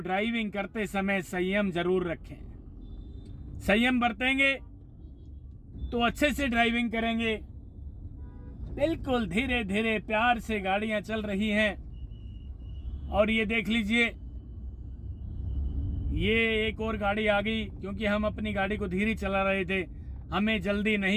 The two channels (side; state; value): both; identical; correlation 1.00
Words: करते समय संयम जरूर रखें। संयम बरतेंगे तो अच्छे से ड्राइविंग करेंगे। बिल्कुल धीरे धीरे प्यार से गाड़ियां चल रही हैं, और ये देख लीजिए ये एक और गाड़ी आ गई, क्योंकि हम अपनी गाड़ी को धीरे चला रहे थे, हमें जल्दी